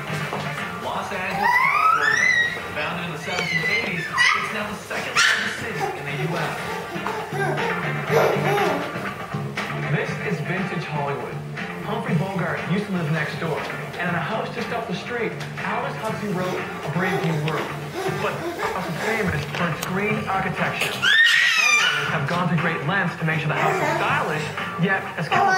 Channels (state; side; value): identical; both; correlation 1.00